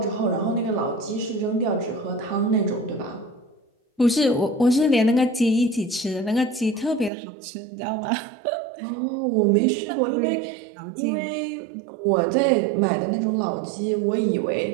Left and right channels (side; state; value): left; drops out; at 7.1 s